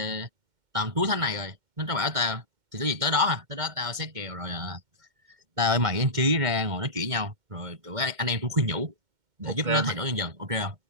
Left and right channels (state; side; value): late; left; 2.1 ms